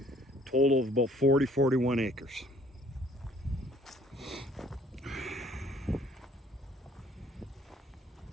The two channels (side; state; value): both; normal; correlation 0.59